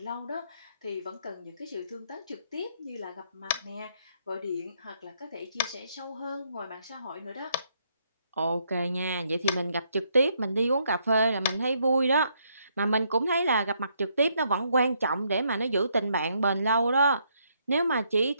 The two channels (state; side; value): inverted; both; correlation -0.73